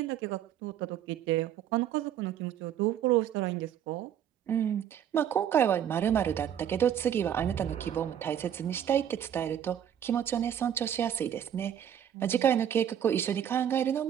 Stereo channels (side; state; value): left; quieter; 9.7 dB